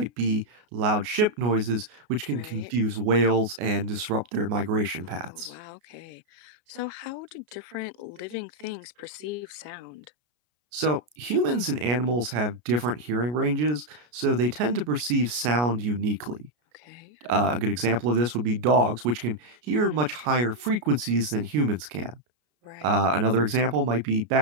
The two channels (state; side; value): late; left; 33 ms